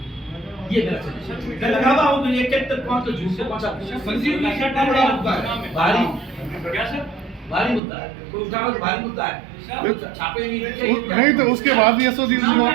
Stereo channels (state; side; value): drops out; left; at 7.8 s